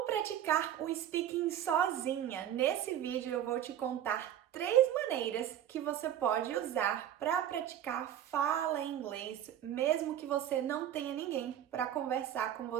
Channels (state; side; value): quieter; left; 10.8 dB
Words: praticar o speaking sozinha, nesse vídeo eu vou te contar 3 maneiras que você pode usar para praticar fala em inglês, mesmo que você não tenha ninguém para conversar com